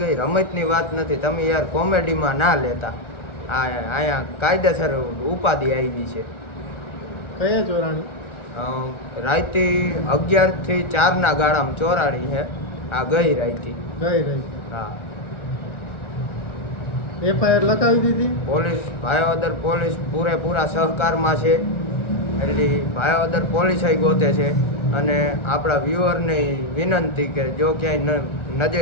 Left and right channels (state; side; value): late; right; 1.4 ms